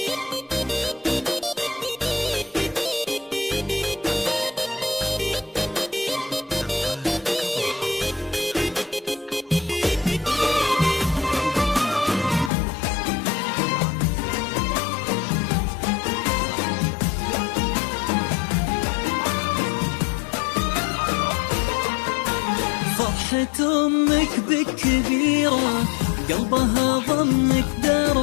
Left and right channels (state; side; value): drops out; right; at 12.5 s